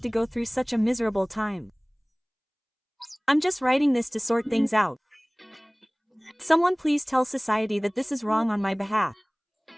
to go through such a miserable time? I'm just writing this to sort things out. Someone please tell society that this is wrong on my behalf.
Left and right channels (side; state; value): both; identical; correlation 1.00